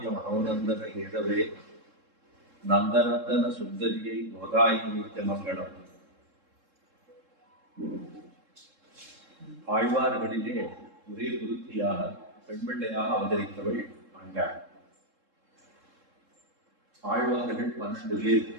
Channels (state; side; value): late; left; 3.7 ms